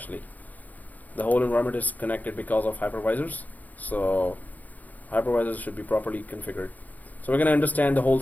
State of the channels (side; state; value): right; late; 0.080 ms